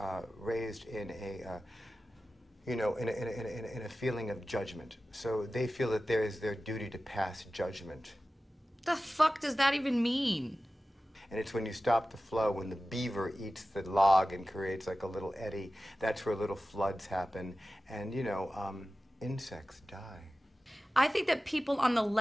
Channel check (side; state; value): both; normal; correlation 0.95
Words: raised in a, in a feeling of judgment. So they feel that there is their duty to pass judgment. The fuck does that even mean? And it's when you stop the flow, when the beaver eats the log and creates like a little eddy, that's where little floods happen, and insects die. I think that people on the